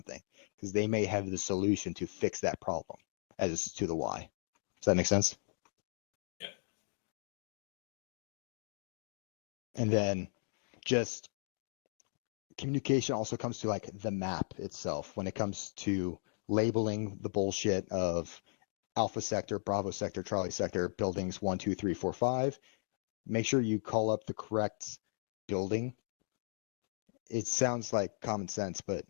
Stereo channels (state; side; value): silent; right; digital silence